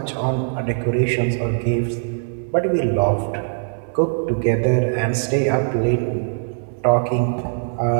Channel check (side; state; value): left; silent; 65 dB below the other